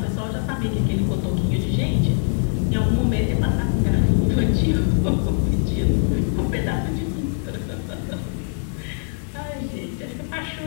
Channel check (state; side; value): silent; right; 58 dB below the other